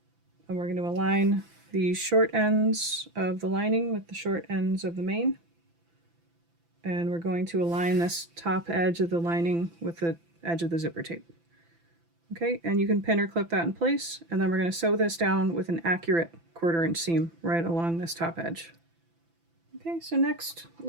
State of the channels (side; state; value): left; late; 5.9 ms